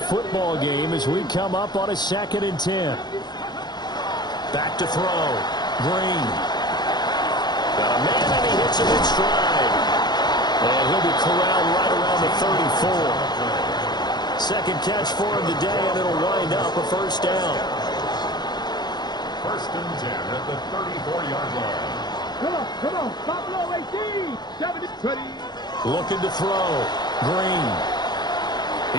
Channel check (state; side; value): late; right; 0.21 ms